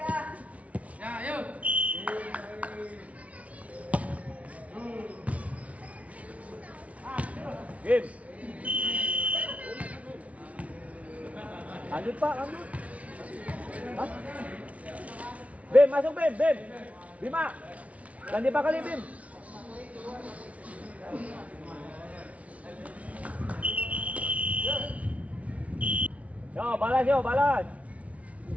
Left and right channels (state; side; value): late; left; 0.066 ms